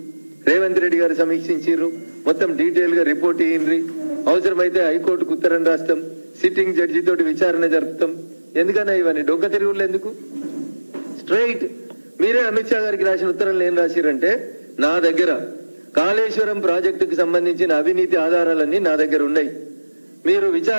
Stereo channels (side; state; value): both; inverted; correlation -1.00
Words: రేవంత్ రెడ్డి గారు సమీక్షించారు, మొత్తం డీటెయిల్ గా రిపోర్ట్ ఇయ్యండి, అవసరమైతే హైకోర్టుకు ఉత్తరం రాస్తాం, సిట్టింగ్ జడ్జి తోటి విచారణ జరుపుతాం. ఎందుకన్నా ఇవన్నీ డొక్క తిరుగుళ్ళు ఎందుకు? స్ట్రైట్ మీరే అమిత్ షా గారికి రాసిన ఉత్తరంలో ఏం రాసిరంటే, నా దగ్గర కాళేశ్వరం ప్రాజెక్టుకు సంబంధించిన అవినీతి ఆధారాలన్నీ నా దగ్గర ఉన్నాయి, మీరు